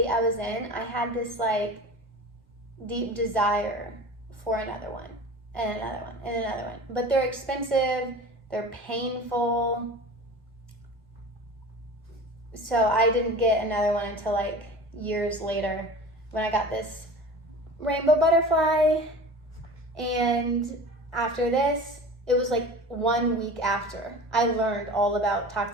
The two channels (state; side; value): normal; both; correlation 0.37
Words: I was in, I had this like deep desire for another one and another one and another one. But they're expensive, they're painful. So I didn't get another one until like years later when I got this rainbow butterfly. And after this, it was like 1 week after I learned all about